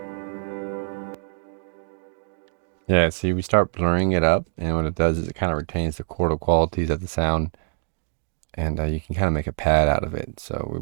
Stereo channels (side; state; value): left; silent; 62 dB below the other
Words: Yeah, see, we start blurring it up, and what it does is it kind of retains the chordal qualities of the sound, and you can kind of make a pad out of it. So